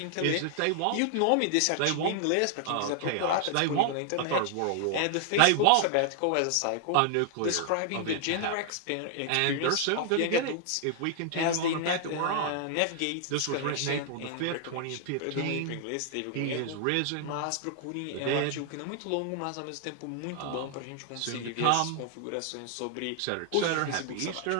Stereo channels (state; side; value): different; both; correlation 0.00